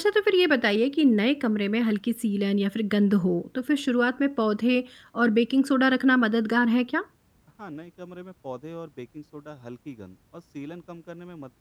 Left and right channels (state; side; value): identical; both; correlation 1.00